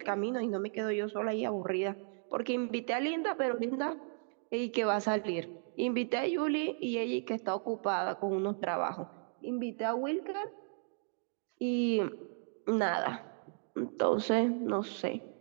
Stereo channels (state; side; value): silent; left; 55 dB below the other